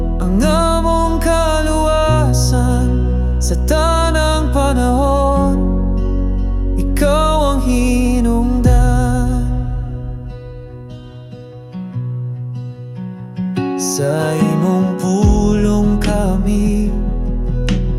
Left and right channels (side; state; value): both; identical; correlation 1.00